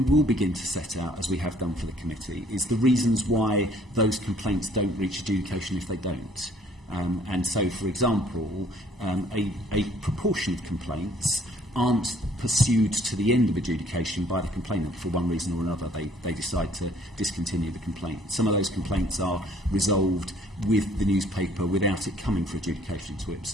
will begin to set out, as we have done for the committee, is the reasons why those complaints don't reach adjudication if they don't. And so, for example, a proportion of complaints aren't pursued to the end of adjudication by the complainant for one reason or another. They decide to discontinue the complaint. Some of those complaints are resolved with the newspaper without it coming for adjudication to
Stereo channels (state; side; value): normal; both; correlation 0.59